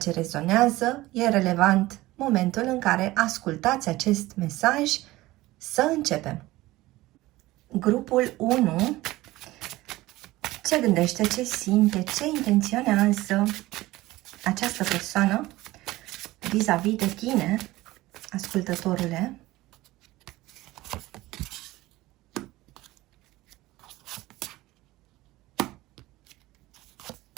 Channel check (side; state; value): left; quieter; 18.2 dB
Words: rezonează. E relevant momentul în care ascultați acest mesaj. Să începem! Grupul 1. Ce gândește, ce simte, ce intenționează această persoană vis-a-vis de tine, ascultătorule?